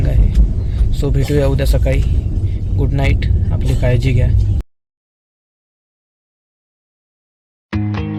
आहे. सो भेटूया उद्या सकाळी. Good night. आपली काळजी घ्या.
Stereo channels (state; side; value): identical; both; correlation 1.00